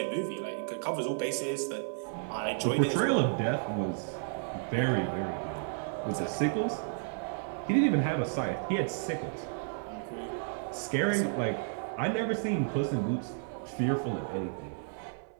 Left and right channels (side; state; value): left; silent; 56 dB below the other